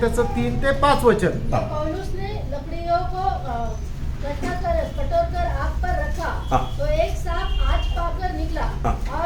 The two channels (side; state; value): both; identical; correlation 1.00